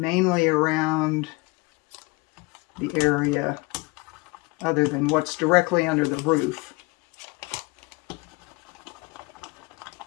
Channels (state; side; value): quieter; right; 25.4 dB